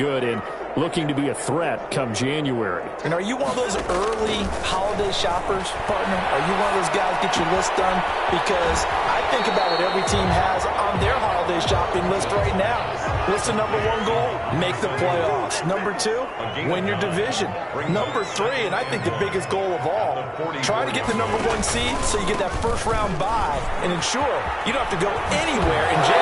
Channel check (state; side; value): identical; both; correlation 1.00